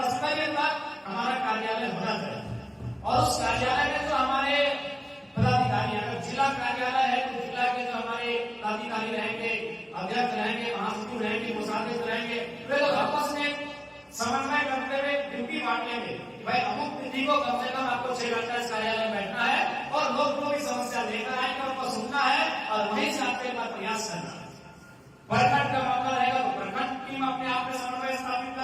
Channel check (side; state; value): both; identical; correlation 1.00